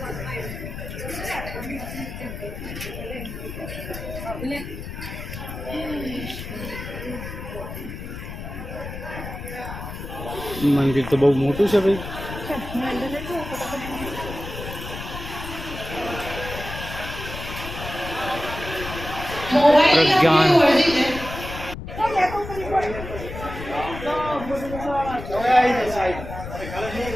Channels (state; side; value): noise; left; rumble, 9 dB below the sound